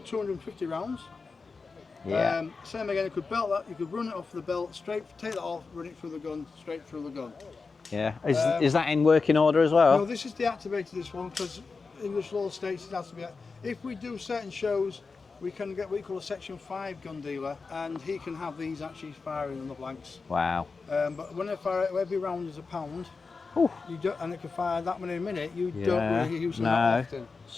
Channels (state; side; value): quieter; right; 4.5 dB